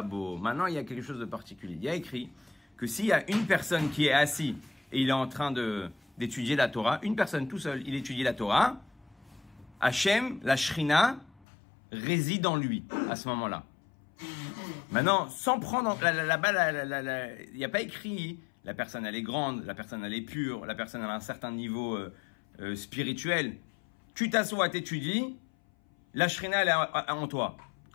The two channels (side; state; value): right; drops out; at 11.5 s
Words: בו. Maintenant, il y a quelque chose de particulier. Il y a écrit que s'il y a une personne qui est assise et il est en train d'étudier la Torah, une personne tout seul, il étudie la Torah, Hachem, la Shrina, réside en lui à ce moment-là. Maintenant, sans prendre là-bas, il n'y a pas écrit la personne elle est grande, la personne elle est pure, la personne elle a un certain niveau spirituel. Tu t'assois, t'étudies, la Shrina elle est en toi.